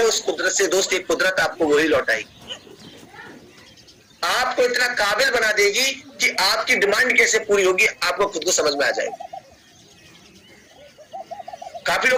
उस कुदरत से दोस्त, एक कुदरत आपको वही लौटाएगी। आपको इतना काबिल बना देगी कि आपकी डिमांड कैसे पूरी होगी आपको खुद को समझ में आ जाएगी। काफी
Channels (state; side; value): identical; both; correlation 1.00